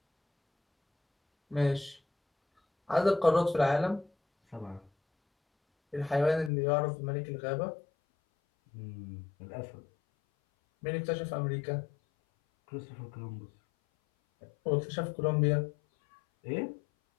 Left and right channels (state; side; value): drops out; right; at 6.5 s